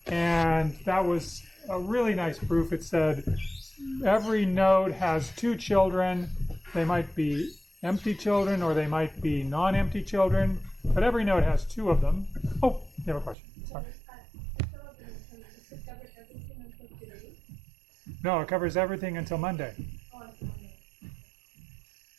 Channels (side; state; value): left; drops out; at 13.4 s